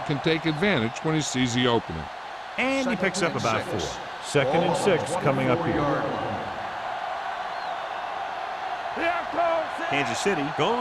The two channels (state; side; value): identical; both; correlation 1.00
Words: can take advantage when he sees the opening. And he picks up about 4. Second and 6 coming up here. Kansas City